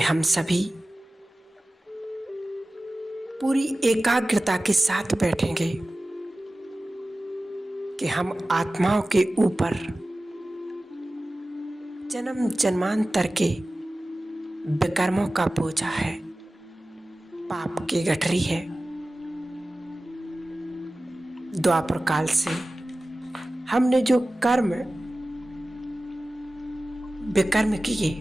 सभी पूरी एकाग्रता के साथ बैठेंगे कि हम आत्माओं के ऊपर जन्म जन्मांतर के विकर्मों का बोझा है, पाप की गठरी है। द्वापर काल से हमने जो कर्म विकर्म किए,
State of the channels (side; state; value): both; normal; correlation 0.96